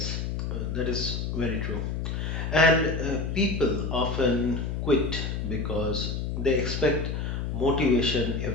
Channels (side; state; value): left; noise; hum, 2 dB below the sound